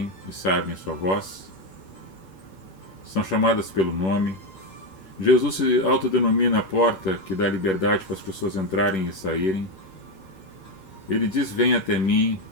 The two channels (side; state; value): right; late; 11 ms